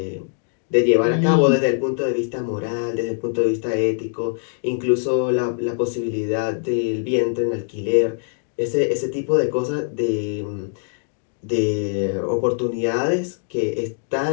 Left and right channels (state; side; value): silent; right; 64 dB below the other